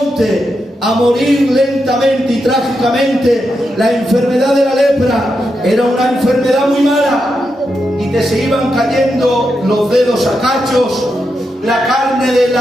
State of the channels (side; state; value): both; normal; correlation 0.85